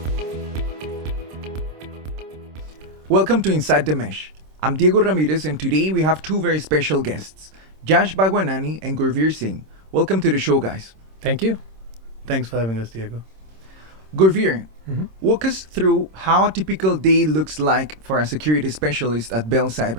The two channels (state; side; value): late; left; 26 ms